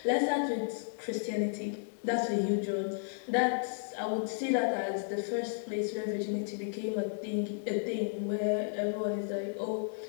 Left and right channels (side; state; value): right; silent; digital silence